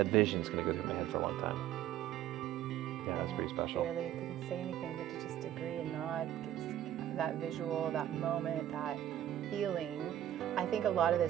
vision's going to go through my head for a long time. Yeah, that's pretty special. I really couldn't say anything but to just agree and nod. That visual, that moment, that feeling. I think a lot of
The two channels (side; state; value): left; quieter; 11.8 dB